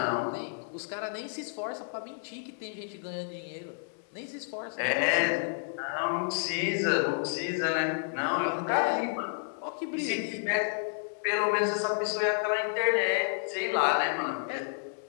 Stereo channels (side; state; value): right; silent; digital silence